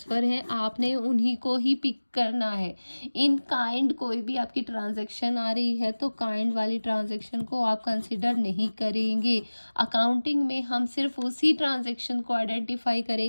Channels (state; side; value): inverted; both; correlation -1.00